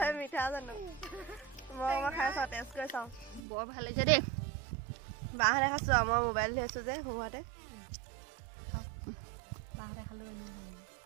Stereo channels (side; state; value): left; drops out; at 3.4 s